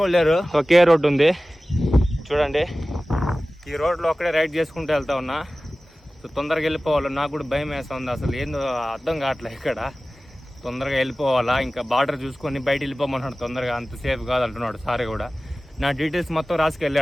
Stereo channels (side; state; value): both; normal; correlation 0.97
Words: లేరు, ఒకే రోడ్డు ఉంది చూడండి. ఈ రోడ్లో ఒక్కడే రైడ్ చేసుకుంటూ వెళ్తా ఉన్నా. సో తొందరగా వెళ్ళిపోవాలి. నాకు కూడా భయం వేస్తుంది, అసలు ఏందో అర్థం కావట్లే. ఇక్కడ తొందరగా వెళ్ళిపోవాలా, ఇంకా బార్డర్ చూసుకొని బయట వెళ్ళిపోమన్నాడు తొందరగా. అంత సేఫ్ కాదు అంటున్నాడు సార్ కూడా. నా డీటెయిల్స్ మొత్తం